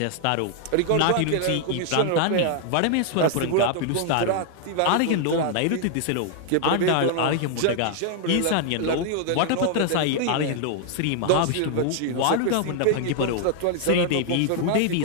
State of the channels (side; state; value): both; different; correlation 0.00